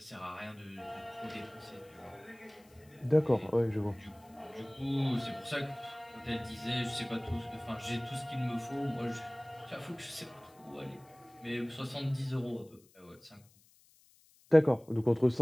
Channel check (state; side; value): noise; left; hiss, 29 dB below the sound